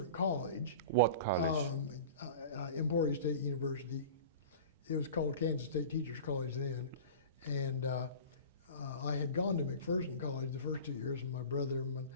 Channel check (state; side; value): inverted; both; correlation -0.36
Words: college. What college? Emporia State University. It was called Kansas State Teachers College then. And I had gone to McPherson College the first 2 years, and my brother.